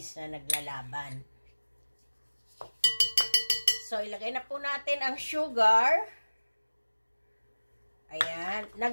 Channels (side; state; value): both; inverted; correlation -1.00